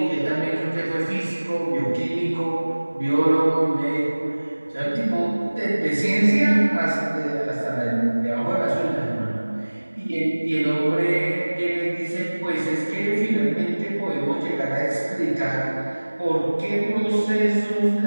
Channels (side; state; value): both; inverted; correlation -1.00